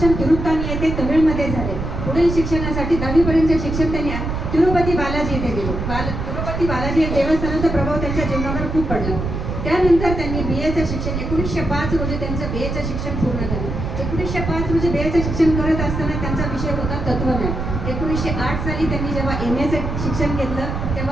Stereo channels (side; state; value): right; noise; rumble, 4 dB below the sound